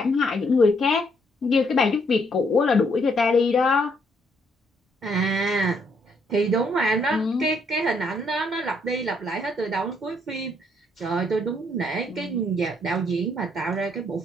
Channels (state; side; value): normal; both; correlation 0.71